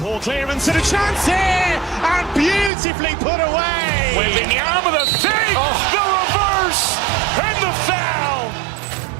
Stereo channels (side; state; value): left; drops out; at 2.7 s